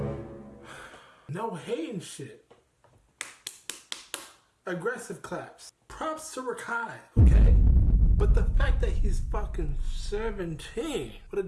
No hating shit. Aggressive claps. Props to Rakai, okay? But the fact that he's fucking 17 with a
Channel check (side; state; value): both; identical; correlation 1.00